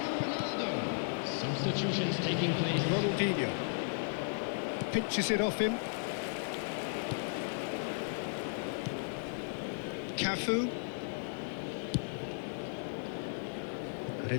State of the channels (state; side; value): silent; right; 54 dB below the other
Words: Ronaldo. Substitutions taking place. Ronaldinho pinches it off him. Cafu. And